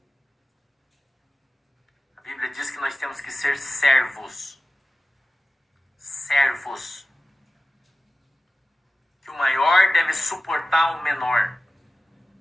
A Bíblia diz que nós temos que ser servos. Servos. Que o maior deve suportar o menor.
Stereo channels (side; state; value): both; normal; correlation 0.95